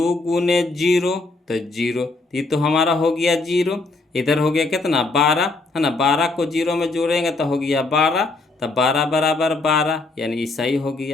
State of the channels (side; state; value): right; quieter; 3.4 dB